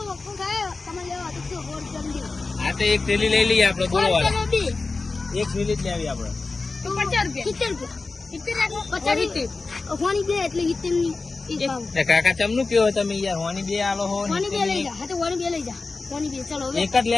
વખો થાય તમે લેવા તો 100 રૂપિયા હા તો એક થેલી લઈ લઈએ આપણે બોલો વાળા. બે એક થેલી જ લેવી આપણે. તો 50 રૂપિયા. 70 રૂપિયા 50 હોની બે એટલે 70 ની એક ભાવ. એ કાકા ચમનું કયો તમે યાર હોની બે આલો હો ને હોની બે લઈ જા. હા તો હોની બે લઈ જા. હોની બે ચલો હવે એક જ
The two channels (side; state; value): right; quieter; 3.8 dB